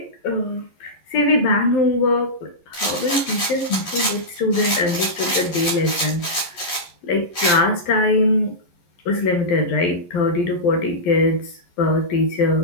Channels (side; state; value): right; late; 11 ms